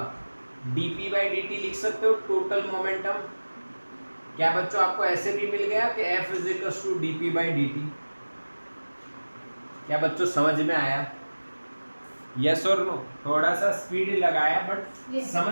dP by dt लिख सकते हो, टोटल मोमेंटम? क्या बच्चों आपको ऐसे भी मिल गया कि F is equals to dP by dt? क्या बच्चों समझ में आया? यस और नो? थोड़ा सा स्पीड लगाया बट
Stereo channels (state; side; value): inverted; both; correlation -1.00